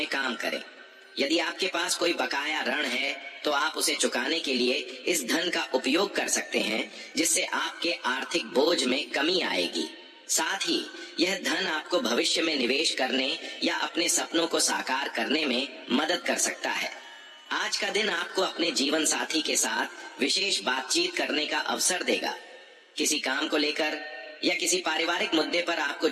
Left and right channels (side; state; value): both; identical; correlation 1.00